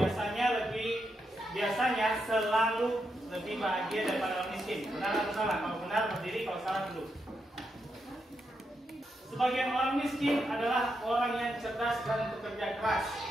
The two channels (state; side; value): normal; both; correlation 0.83